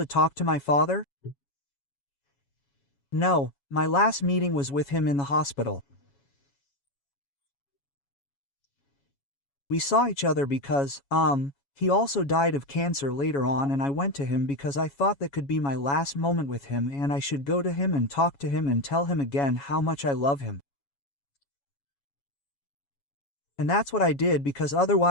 talk to my father? No, my last meeting was with him in the hospital. We saw each other because, he also died of cancer later on and I went to him because I thought that could be my last moment with him and I should go to him and talk to him and tell him again how much I love him. And that's what I did because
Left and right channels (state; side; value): late; right; 7.2 ms